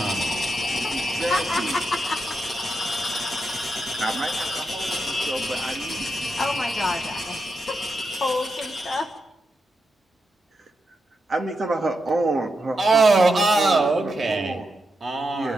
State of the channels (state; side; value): normal; both; correlation 0.85